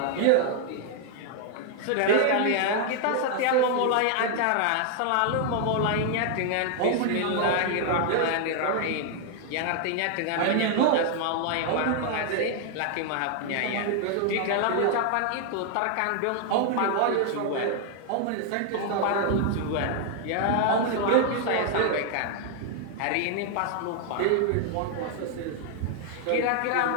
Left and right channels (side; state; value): both; different; correlation 0.00